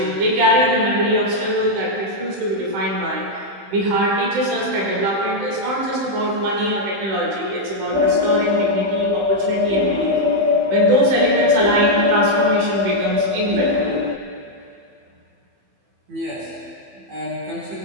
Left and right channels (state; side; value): late; left; 15 ms